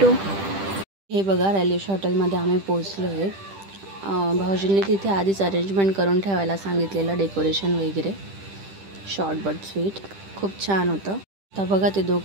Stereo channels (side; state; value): left; late; 10 ms